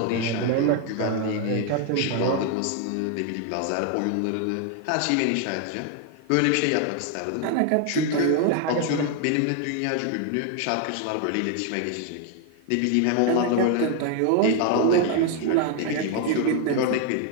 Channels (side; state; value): both; different; correlation 0.00